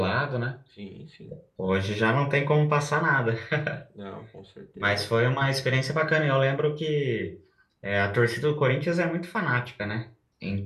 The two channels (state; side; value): identical; both; correlation 1.00